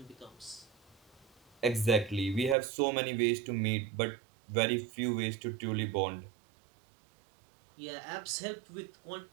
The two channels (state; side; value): drops out; left; at 2.6 s